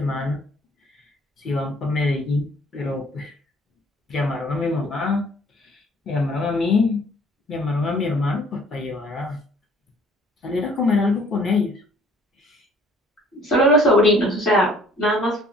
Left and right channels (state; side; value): normal; both; correlation 0.57